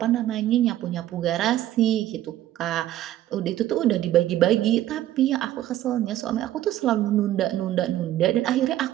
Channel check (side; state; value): left; quieter; 13.4 dB